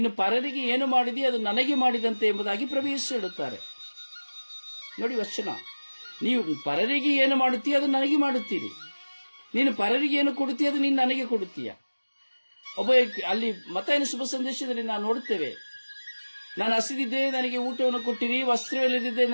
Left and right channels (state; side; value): inverted; both; correlation -1.00